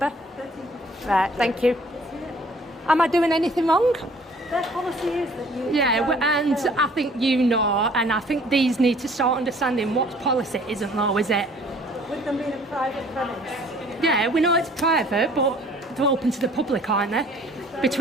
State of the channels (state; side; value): normal; both; correlation 0.55